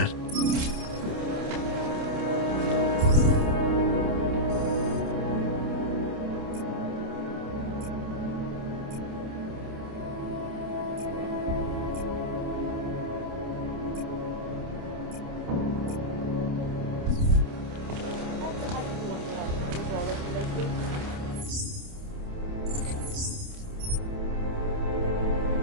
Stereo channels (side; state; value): left; late; 28 ms